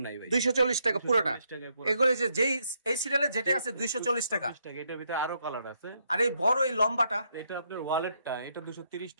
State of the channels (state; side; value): inverted; both; correlation -0.76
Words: নাই ভাই। 240 টাকা পুরোটা। 240 টাকায় পুরো। এগুলো যে যেই এই সিরিয়ালে যেটা আছে 240 টাকা। 240 টাকা। এটার ভিতরে আরো কালার আছে। আর এই বড় এই লম্বাটা, এটা আপনার ওয়ালেটটা, এটা 230